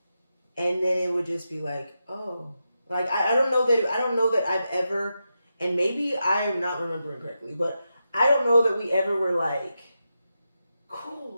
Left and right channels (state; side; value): inverted; both; correlation -0.88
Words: And then it would just be like, oh, like I don't know that I've ever, and maybe I am not remembering correctly, but I don't know that we ever were like,